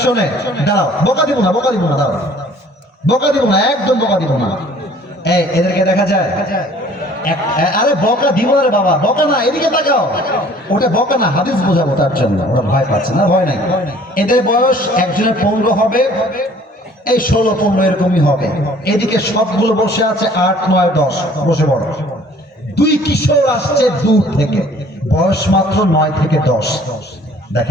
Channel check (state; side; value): normal; both; correlation 0.54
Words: দাঁড়াও, বকা দিব না, বকা দিব না, দাঁড়াও, বকা দিব না, একদম বকা দিব না। এই এদেরকে দেখা যায়? আরে বকা দিব না রে বাবা, বকা না, এদিকে তাকাও। ওটা বকা না, হাদিস বোঝাবো তার জন্য। ওরা ভয় পাচ্ছে না, ভয় নাই। এদের বয়স একজনের 15 হবে, এই 16-15 এরকমই হবে। এদিকে সবগুলো বসে আছে 8, 9, 10, বসে বড়। দুই কিশোর আসছে দূর থেকে, বয়স মাত্র 9 থেকে 10।